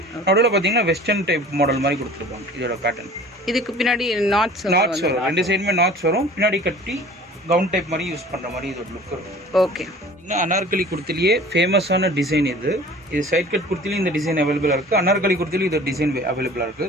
நடுவில் பார்த்தீங்கன்னா வெஸ்டர்ன் டைப் மாடல் மாதிரி கொடுத்துருப்பாங்க இதோட பேட்டர்ன். இதுக்கு பின்னாடி நாட்ஸ் வரும். 2 சைடுமே நாட்ஸ் வரும். பின்னாடி கட்டி கவுன் டைப் மாதிரி யூஸ் பண்ணுற மாதிரி இதோட லுக் இருக்கும். ஓகே. அனார்கலி குர்த்திலேயே ஃபேமஸான டிசைன் இது. சைட் கட் குர்த்திலையும் இந்த டிசைன் அவைலபிளாக இருக்குது. அனார்கலி குர்த்திலையும் இதோட டிசைன் அவைலபிளாக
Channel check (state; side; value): normal; both; correlation 0.45